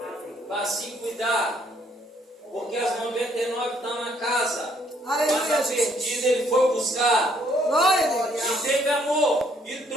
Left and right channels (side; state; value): both; normal; correlation 0.67